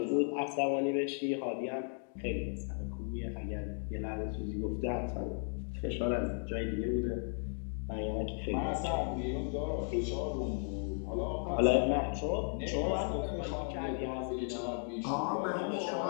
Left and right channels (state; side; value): silent; right; 54 dB below the other